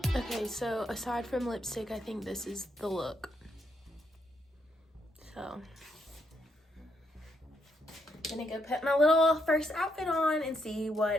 Okay, so aside from lipstick, I think this is the look. So gonna go put my little first outfit on and see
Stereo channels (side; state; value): both; normal; correlation 0.77